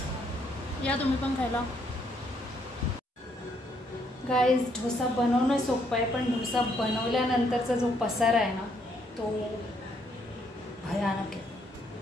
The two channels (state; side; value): normal; both; correlation 0.71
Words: या तुम्ही पण खायला. गाईज डोसा बनवणं सोपं आहे, पण डोसा बनवल्यानंतरचा जो पसारा आहे ना तो भयानक आहे.